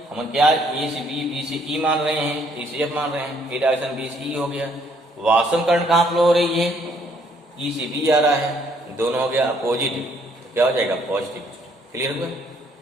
हम क्या ए से बी, बी से ई मान रहे हैं, ए से एफ मान रहे हैं, ए डायरेक्शन बी से ई हो गया। वास्तव करंट कहाँ फ्लो हो रही है, ई से बी आ रहा है, दोनों हो गया अपोजिट, तो क्या हो जाएगा पॉजिटिव। क्लियर हुआ,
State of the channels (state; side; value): normal; both; correlation 0.66